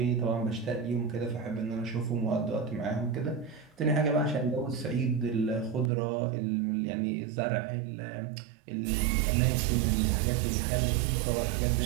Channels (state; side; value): drops out; left; at 5.9 s